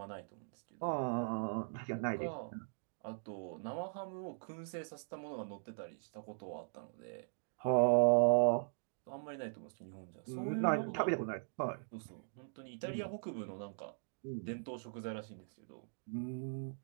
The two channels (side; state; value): left; silent; digital silence